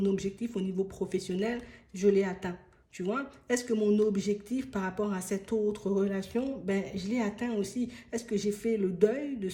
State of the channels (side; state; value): both; identical; correlation 1.00